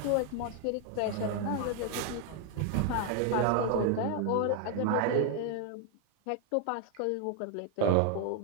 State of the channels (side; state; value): both; different; correlation 0.01